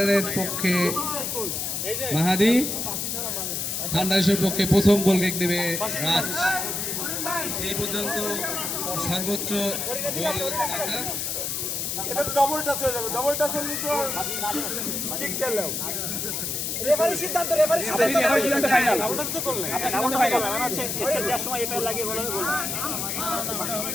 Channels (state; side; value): noise; left; hiss, 2 dB below the sound